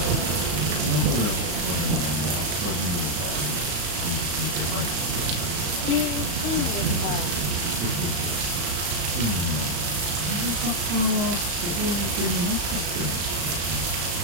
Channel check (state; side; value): late; left; 35 ms